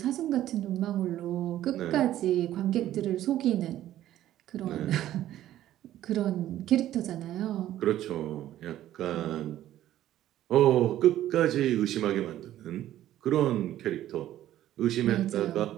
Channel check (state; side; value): quieter; left; 13.0 dB